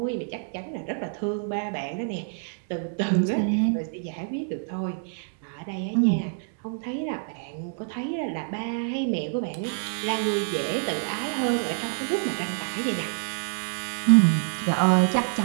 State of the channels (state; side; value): silent; left; 60 dB below the other